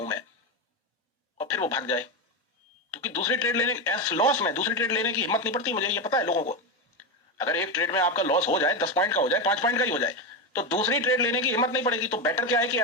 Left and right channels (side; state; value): both; normal; correlation 0.12